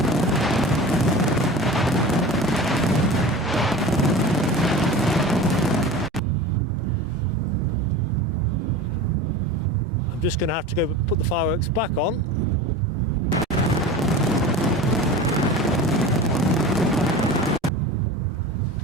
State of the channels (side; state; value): both; normal; correlation 0.34